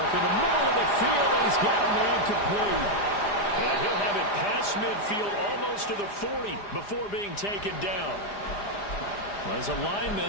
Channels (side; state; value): right; late; 4.9 ms